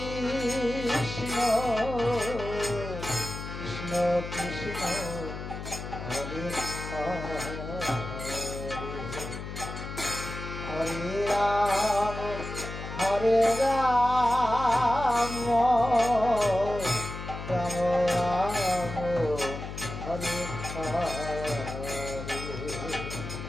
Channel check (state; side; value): noise; left; hum, 8 dB below the sound